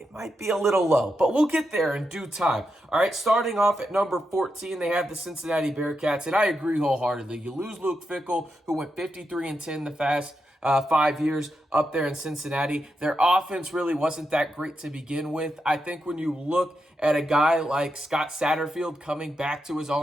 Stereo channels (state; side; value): normal; both; correlation 0.85